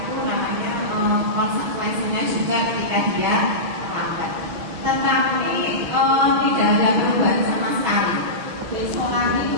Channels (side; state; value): left; late; 6.4 ms